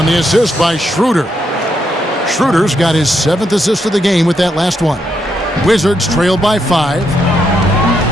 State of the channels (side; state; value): both; normal; correlation 0.79